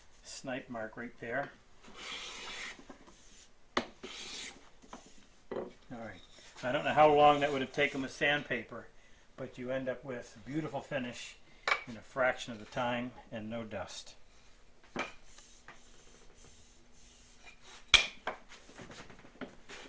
snipe mark right there. Alright, I don't know how long that would have taken with sandpaper, but you end up with a beautiful finish in a fraction of the time and no dust.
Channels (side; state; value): both; identical; correlation 1.00